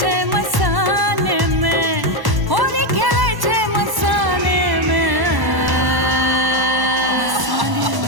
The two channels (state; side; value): late; left; 1.0 ms